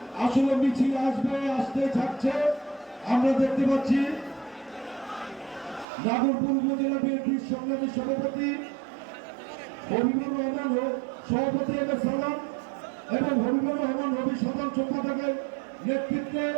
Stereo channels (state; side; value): drops out; left; at 5.9 s